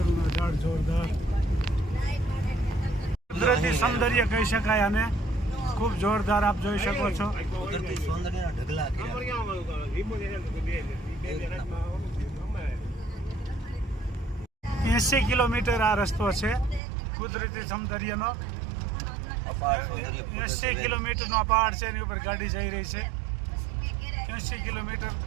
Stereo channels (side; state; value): left; drops out; at 16.8 s